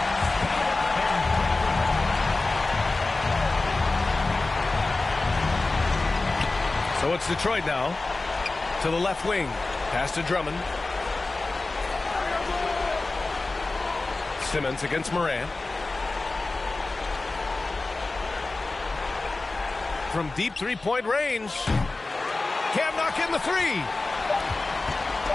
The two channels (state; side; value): quieter; right; 3.3 dB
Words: So it's Detroit now. To the left wing. Pass to Drummond. Simmons against Moran. From deep 3-point range. Can't knock in the 3.